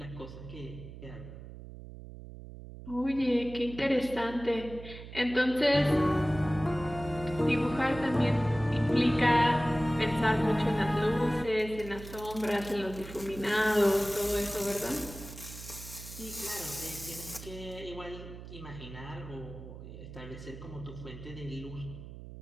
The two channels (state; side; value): noise; right; hum, 13 dB below the sound